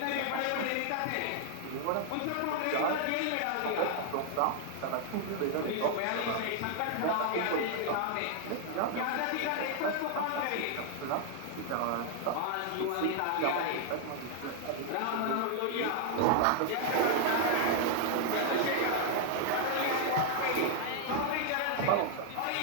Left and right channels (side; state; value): both; different; correlation 0.00